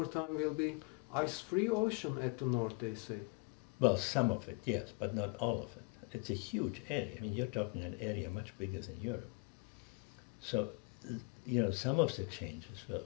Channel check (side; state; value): right; quieter; 31.1 dB